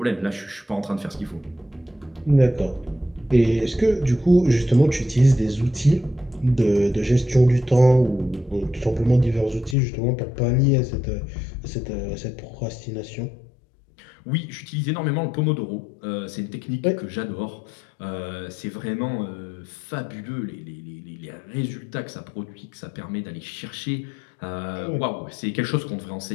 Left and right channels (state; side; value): drops out; right; at 9.8 s